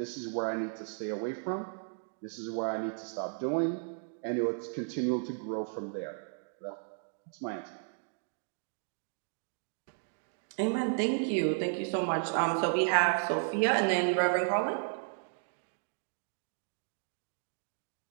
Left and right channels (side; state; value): left; silent; digital silence